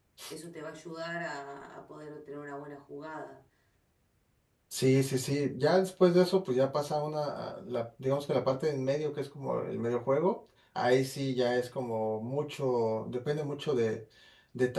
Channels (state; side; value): identical; both; correlation 1.00